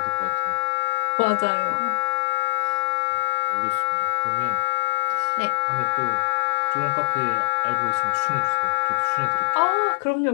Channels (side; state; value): right; silent; 63 dB below the other